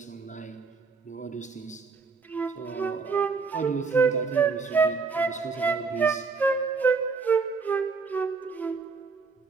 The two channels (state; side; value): quieter; left; 4.7 dB